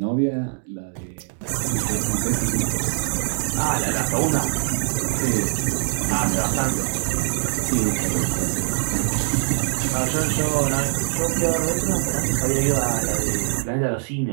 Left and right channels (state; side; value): silent; left; digital silence